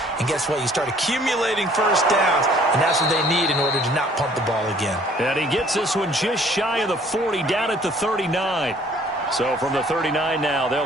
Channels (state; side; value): normal; both; correlation 0.57